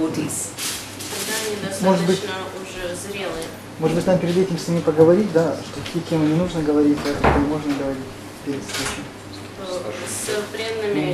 Тогда они достаточно уже зрелые. Может быть, нам перед этим с ними поговорить, да, что какие темы не нужно говорить, а какие можно говорить перед встречей. С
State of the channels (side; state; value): both; identical; correlation 1.00